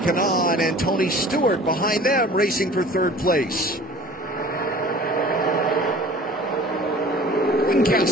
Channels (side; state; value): both; normal; correlation 0.45